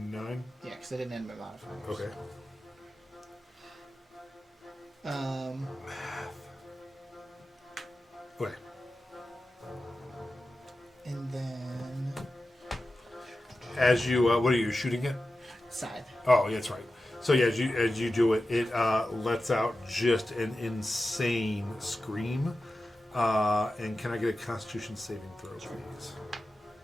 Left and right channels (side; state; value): both; normal; correlation 0.93